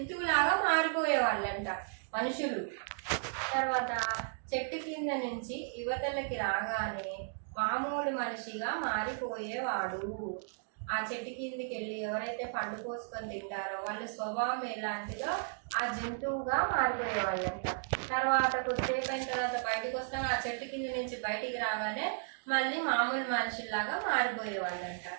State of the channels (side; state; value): left; silent; digital silence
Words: మారిపోయేవాళ్ళంట మనుషులు. తర్వాత చెట్టు కింద నుంచి యువతలకి రాగానే మామూలు మనిషిగా మారిపోయేవాడు. ఆ చెట్టు కిందికి వెళ్ళి ఎవరైతే పండు కోసుకొని తింటారో వాళ్ళ స్వభావం ఎలాంటిదో ఆ జంతువుగా మారిపోయేవాళ్ళంట. తర్వాత కొద్దిసేపు అయిన తర్వాత బయటకు వస్తాం, ఆ చెట్టు కింద నుంచి బయటికి రాగానే మళ్ళీ మామూలు మనుషుల్లాగా మారిపోయేవాళ్ళంట.